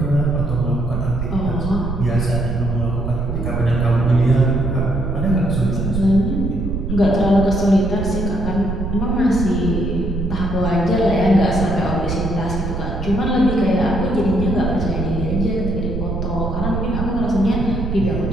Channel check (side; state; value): right; noise; rumble, 3 dB below the sound